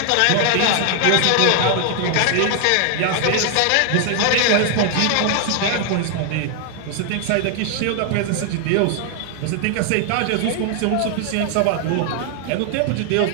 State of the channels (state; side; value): different; both; correlation 0.00